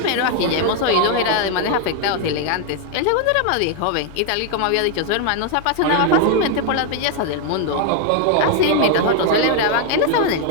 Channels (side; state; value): both; different; correlation 0.01